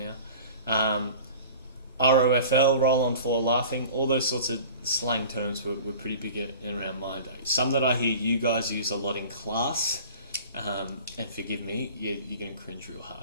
ROFL, roll on floor laughing. All those sorts of slang terms were pretty big around my day. Some that I hear you guys use a lot in class, and forgive me, you're going to cringe real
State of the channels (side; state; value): both; inverted; correlation -0.41